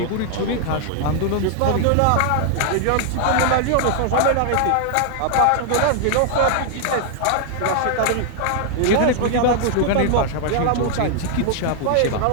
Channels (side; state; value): both; different; correlation 0.00